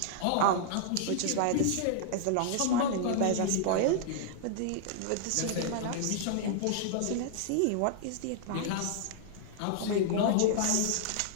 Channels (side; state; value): both; different; correlation -0.01